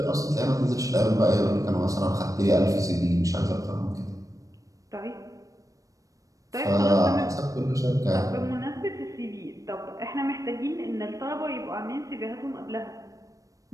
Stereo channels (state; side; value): late; left; 0.16 ms